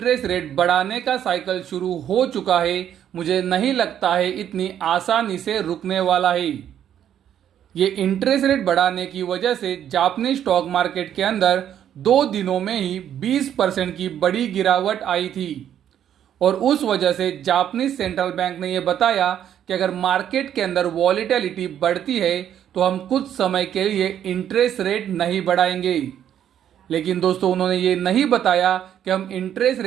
रेट बढ़ाने का साइकिल शुरू हो चुका है, मुझे नहीं लगता है इतनी आसानी से रुकने वाला है। ये इंटरेस्ट रेट बढ़ाने की वजह से जापानी स्टॉक मार्केट के अंदर 2 दिनों में ही 20% की बड़ी गिरावट आई थी और उस वजह से जापानीज सेंट्रल बैंक ने यह बताया कि अगर मार्केट के अंदर वॉलेटिलिटी बढ़ती है तो हम कुछ समय के लिए इंटरेस्ट रेट नहीं बढ़ाएंगे। लेकिन दोस्तों उन्होंने ये नहीं बताया कि हम इंटरेस्ट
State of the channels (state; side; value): quieter; left; 10.1 dB